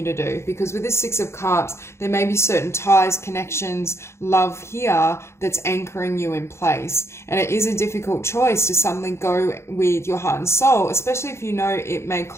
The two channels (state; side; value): late; right; 0.13 ms